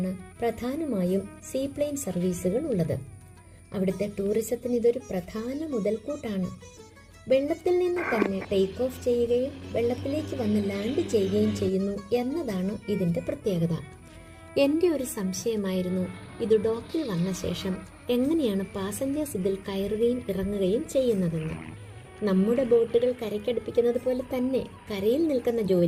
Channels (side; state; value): both; identical; correlation 1.00